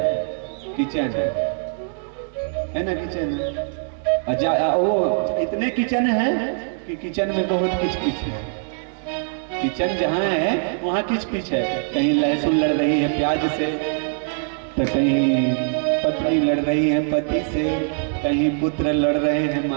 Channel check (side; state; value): left; silent; digital silence